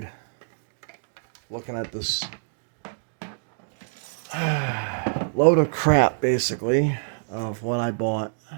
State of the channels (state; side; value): silent; left; digital silence